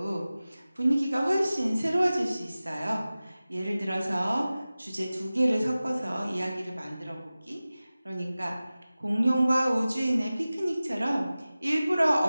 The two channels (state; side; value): inverted; both; correlation -0.97